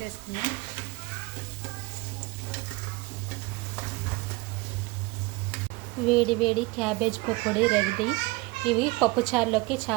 వేడి వేడి క్యాబేజ్ పకోడీ రెడీ. ఇవి పప్పుచారులోకి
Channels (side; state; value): left; quieter; 23.3 dB